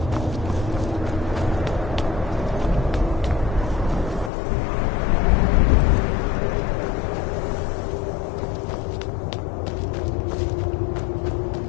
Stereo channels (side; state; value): right; drops out; at 4.3 s